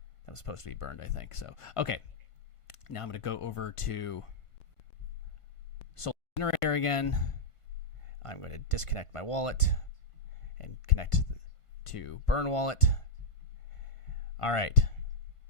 was supposed to be burned, I think. So, okay. Now I'm going to go over to Soul Generator again. I'm going to disconnect my wallet and connect to Burn Wallet. All right.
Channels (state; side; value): late; right; 1.5 ms